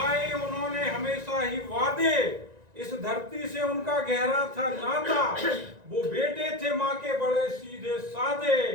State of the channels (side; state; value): left; late; 1.9 ms